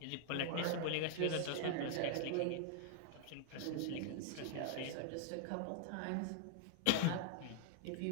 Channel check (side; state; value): both; different; correlation 0.00